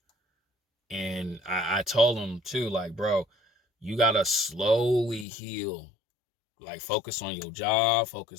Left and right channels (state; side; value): drops out; right; at 5.2 s